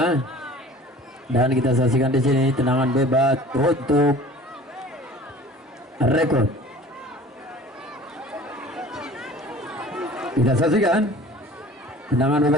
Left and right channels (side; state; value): both; normal; correlation 0.45